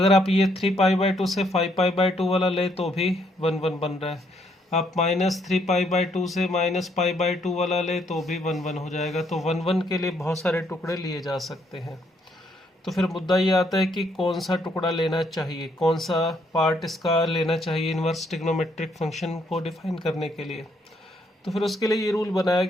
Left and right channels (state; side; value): normal; both; correlation 0.71